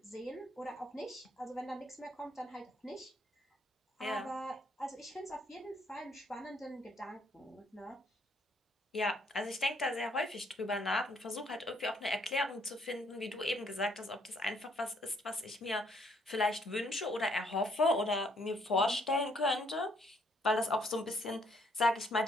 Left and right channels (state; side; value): normal; both; correlation 0.68